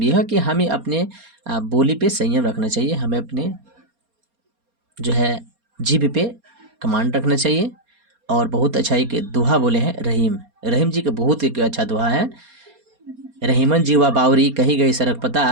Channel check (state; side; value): late; left; 4.3 ms